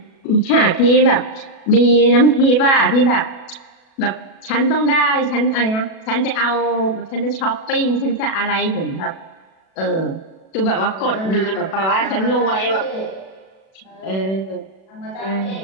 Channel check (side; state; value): right; late; 37 ms